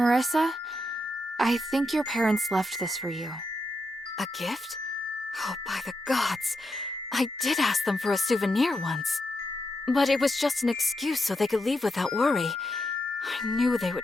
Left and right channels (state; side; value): normal; both; correlation 0.84